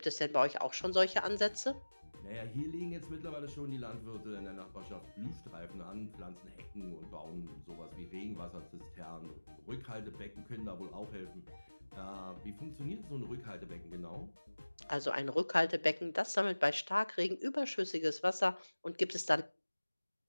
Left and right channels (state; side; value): inverted; both; correlation -1.00